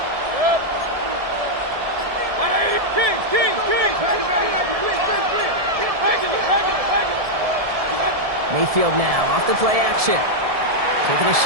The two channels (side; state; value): left; late; 1.7 ms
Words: Mayfield now off the play action. Taking a